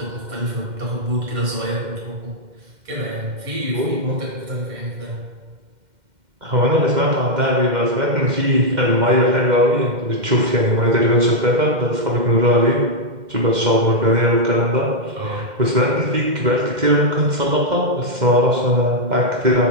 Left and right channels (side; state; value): left; late; 2.1 ms